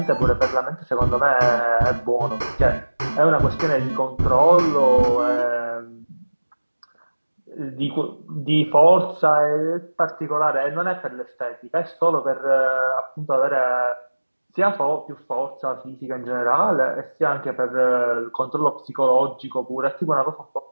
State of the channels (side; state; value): both; inverted; correlation -1.00